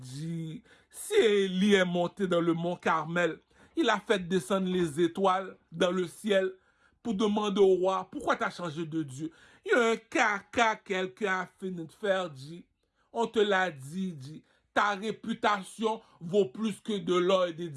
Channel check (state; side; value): identical; both; correlation 1.00